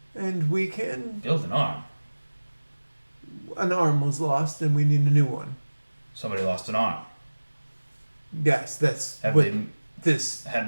And we can. Build an arm. An arm was lost, and we need a new one. Somebody lost an arm. Yes, that's Have what they this.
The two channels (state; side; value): inverted; both; correlation -1.00